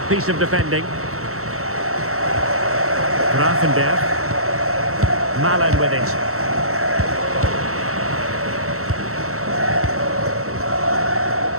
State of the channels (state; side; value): late; left; 0.63 ms